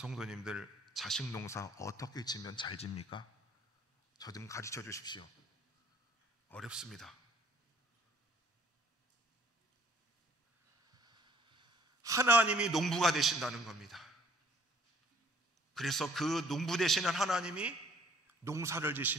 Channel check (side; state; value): both; normal; correlation 0.58